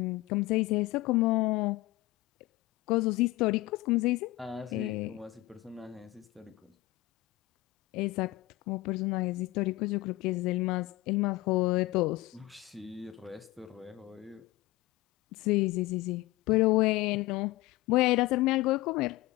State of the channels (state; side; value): quieter; right; 18.8 dB